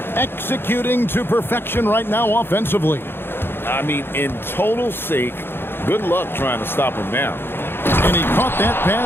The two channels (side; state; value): right; late; 0.11 ms